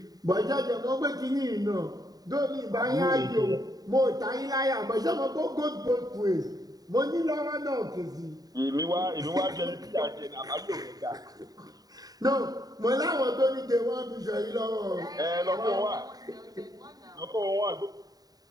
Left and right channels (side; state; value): left; late; 0.18 ms